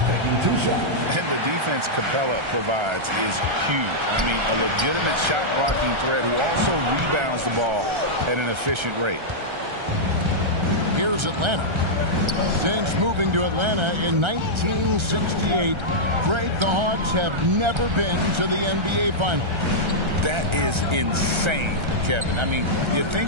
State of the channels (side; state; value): left; late; 1.3 ms